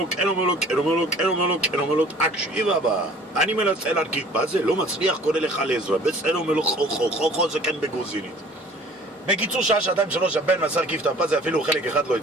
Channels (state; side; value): normal; both; correlation 0.50